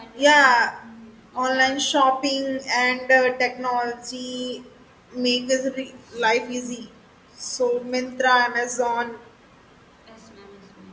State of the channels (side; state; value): both; identical; correlation 1.00